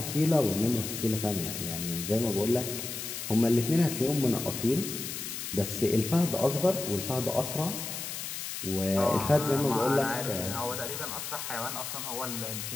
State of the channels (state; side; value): noise; left; hiss, 6 dB below the sound